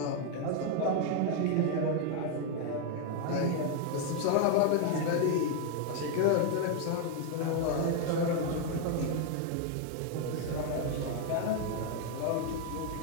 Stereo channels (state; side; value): different; both; correlation 0.00